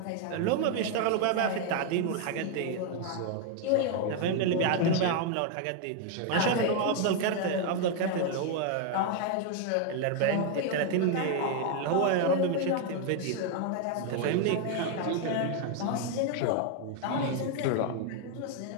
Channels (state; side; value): different; both; correlation 0.01